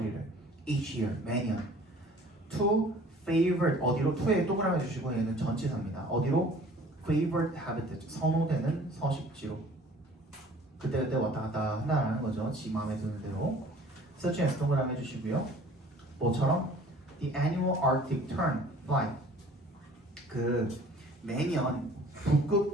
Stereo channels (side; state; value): both; normal; correlation 0.51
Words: each year, 매년 to favored, 어디로? to에 동그라미 주시고 얘는 전치사입니다. 어디로? favored habitat, 선호되는 서식지로 그때그때 왔다 갔다 한다는 거죠. 지 마음에 드는 대로. such as 동그라미 해주시고요. 뭐처럼? The annual Arctic tern flight. 그 매년